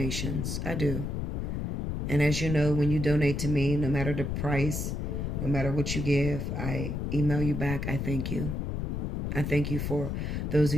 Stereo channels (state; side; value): noise; left; rumble, 2 dB below the sound